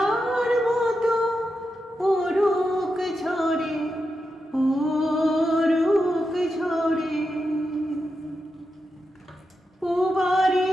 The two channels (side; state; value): both; normal; correlation 0.88